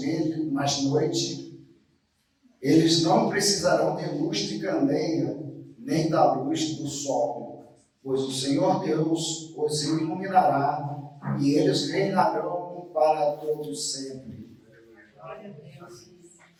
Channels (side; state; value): both; identical; correlation 1.00